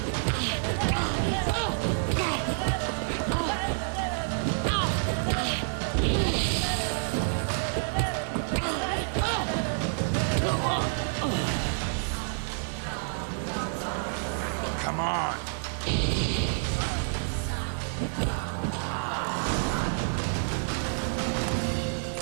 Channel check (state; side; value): silent; left; 58 dB below the other